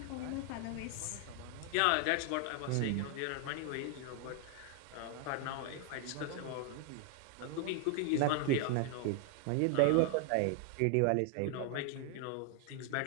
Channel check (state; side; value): different; both; correlation 0.00